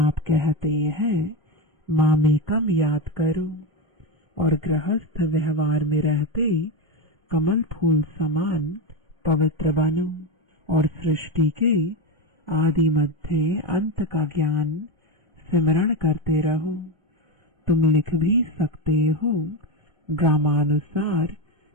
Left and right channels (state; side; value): normal; both; correlation 0.14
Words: कहते हैं माँ में कम याद करो और गृहस्थ व्यवहार में रहते कमल फूल समान पवित्र बनो और सृष्टि के आदि मध्य अंत का ज्ञान सिमरण करते रहो। तुम लिख भी सकते हो, ग्रामानुसार